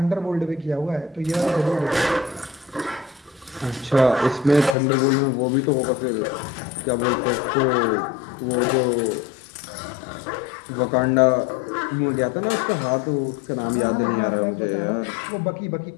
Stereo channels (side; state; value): right; drops out; at 4.8 s